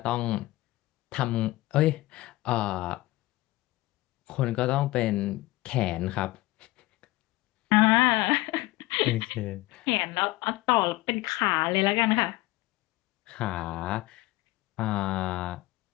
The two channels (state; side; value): quieter; right; 18.9 dB